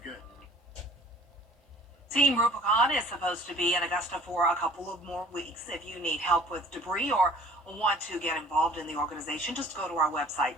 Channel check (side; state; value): both; normal; correlation 0.50